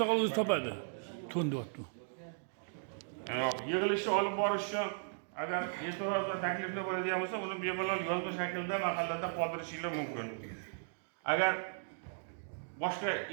o'zi topadi. To'ndi o'tdi. Yig'ilishni olib borish uchun agar e'tiroz va takliflar bo'ladigan bo'lsa, uni bemalol yozma shaklda mahallada qoldirishinglar mumkin. Agar boshqa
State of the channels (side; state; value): left; silent; digital silence